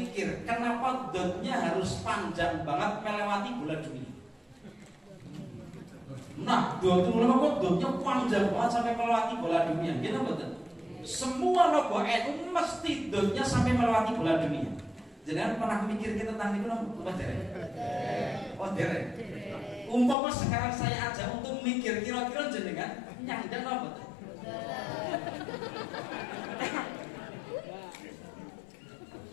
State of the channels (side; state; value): right; drops out; at 20.2 s